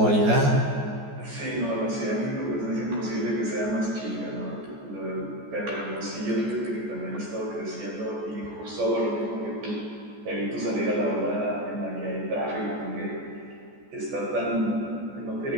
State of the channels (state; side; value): late; left; 14 ms